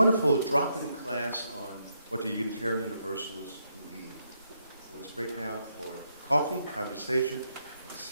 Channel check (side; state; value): both; inverted; correlation -0.78